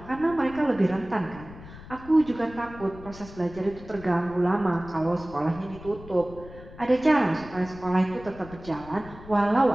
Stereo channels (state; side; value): noise; left; rumble, 17 dB below the sound